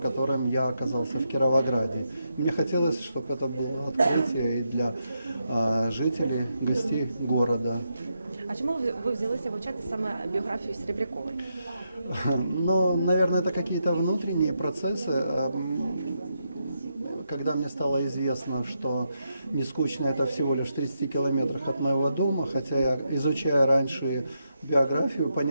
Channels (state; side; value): inverted; both; correlation -0.83